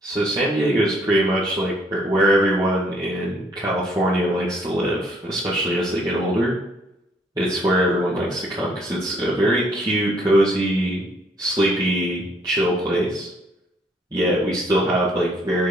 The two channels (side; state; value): both; normal; correlation 0.65